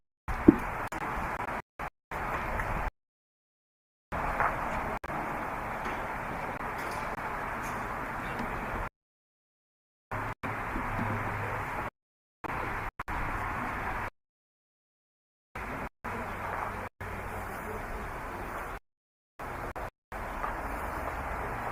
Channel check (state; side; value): identical; both; correlation 1.00